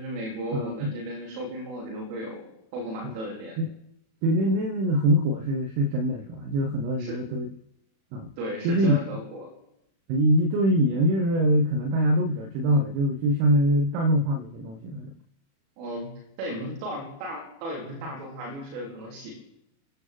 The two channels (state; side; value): late; left; 36 ms